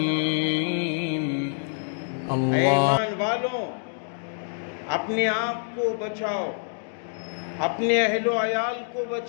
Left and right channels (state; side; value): silent; right; digital silence